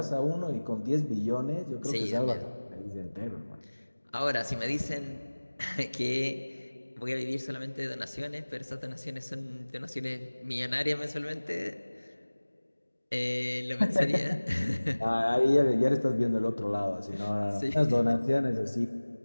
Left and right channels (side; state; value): both; inverted; correlation -1.00